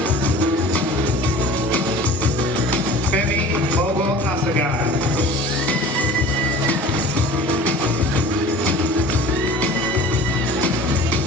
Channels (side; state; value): both; normal; correlation 0.41